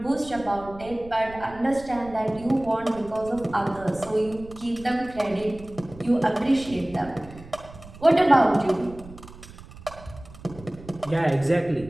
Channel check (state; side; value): noise; right; rumble, 18 dB below the sound